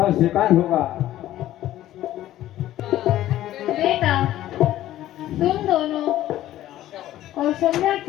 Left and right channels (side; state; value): right; quieter; 13.8 dB